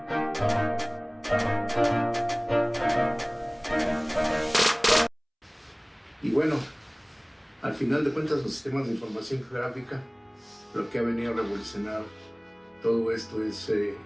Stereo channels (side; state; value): both; identical; correlation 1.00